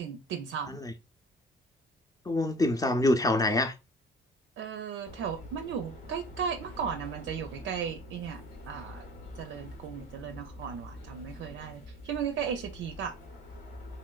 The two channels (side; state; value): both; normal; correlation 0.44